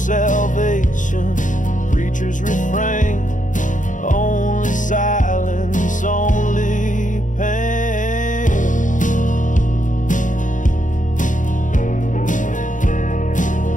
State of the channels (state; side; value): late; right; 0.37 ms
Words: preachers refrain, only silence, only pain.